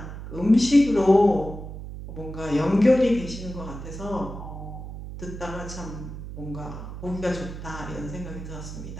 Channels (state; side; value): noise; right; hum, 10 dB below the sound